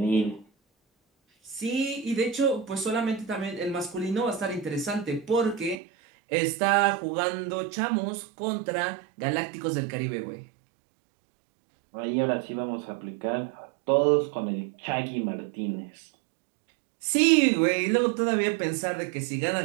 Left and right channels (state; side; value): drops out; left; at 5.8 s